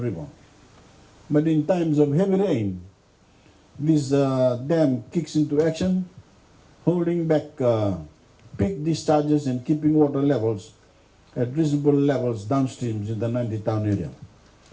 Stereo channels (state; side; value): identical; both; correlation 1.00